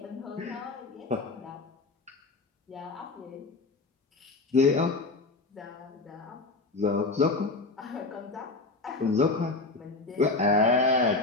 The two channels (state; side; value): quieter; right; 3.4 dB